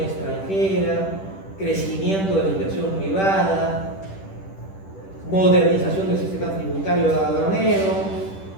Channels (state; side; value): late; right; 10 ms